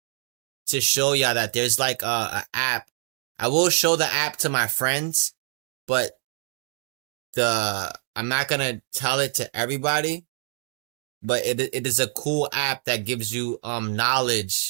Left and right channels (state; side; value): silent; left; 62 dB below the other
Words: to show y'all that there's like a app. I will show the app to my friends, but the I'm not gonna tell it to everybody. But it is a cool app that gives you